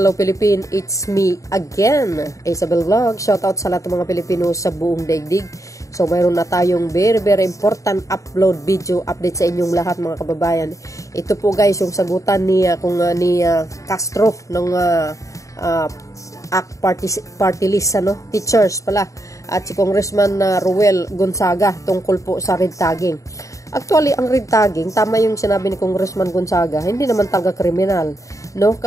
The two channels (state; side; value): late; right; 0.16 ms